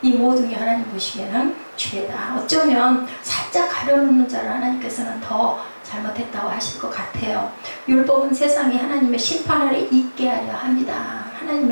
이 모든 게 하나님 보시기에는 죄다. 어쩌면 살짝 가려놓는 자를 하나님께서는 더 잘못했다고 하실 것 같아요. 율법은 세상에 하나님의 심판 아래 있게 하려 합니다.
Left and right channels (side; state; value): both; inverted; correlation -1.00